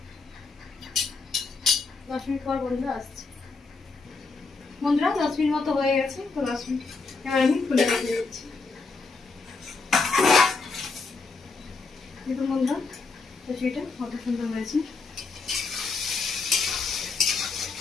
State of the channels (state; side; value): quieter; right; 4.2 dB